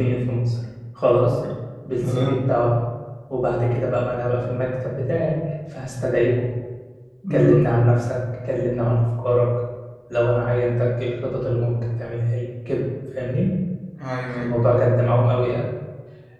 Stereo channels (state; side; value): identical; both; correlation 1.00